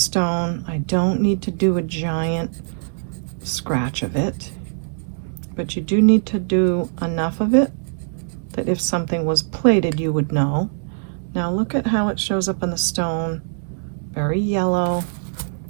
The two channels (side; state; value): left; silent; digital silence